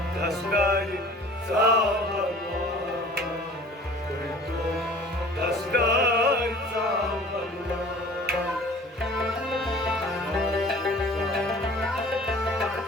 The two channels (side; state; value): both; normal; correlation 0.46